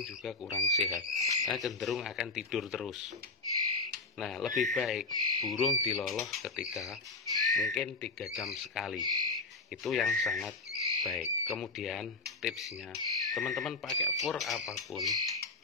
juga kurang sehat, karena cenderung akan tidur terus. Nah, lebih baik burung diloloh ketika mungkin 3 jam sekali. Itu yang sangat baik. Kemudian tipsnya, teman-teman pakai fur apapun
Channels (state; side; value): quieter; right; 3.6 dB